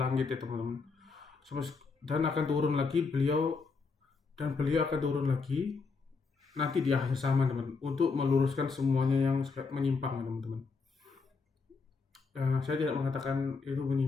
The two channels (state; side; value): quieter; right; 4.6 dB